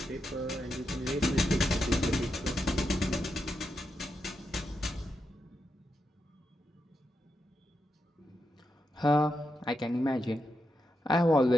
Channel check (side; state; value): both; normal; correlation 0.85